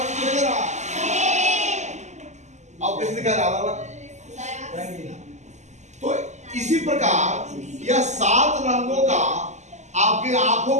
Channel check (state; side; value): late; left; 0.34 ms